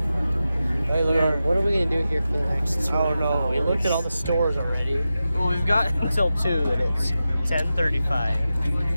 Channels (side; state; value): both; inverted; correlation -0.92